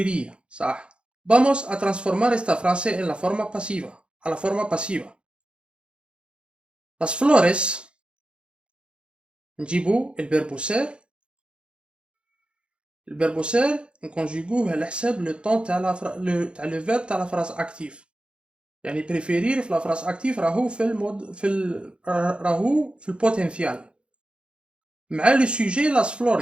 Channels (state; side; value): late; left; 0.056 ms